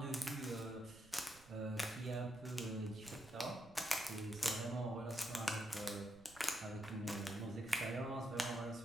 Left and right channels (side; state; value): right; noise; rumble, 21 dB below the sound